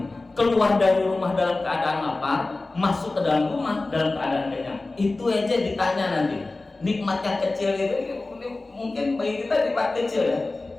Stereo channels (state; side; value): quieter; right; 3.2 dB